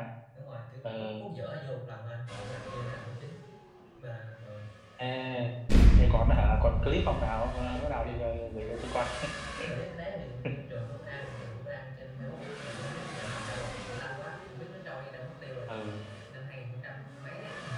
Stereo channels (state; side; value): identical; both; correlation 1.00